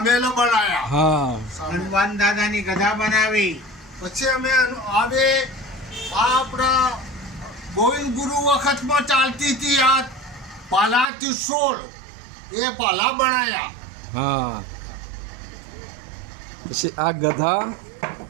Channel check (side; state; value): left; drops out; at 11.1 s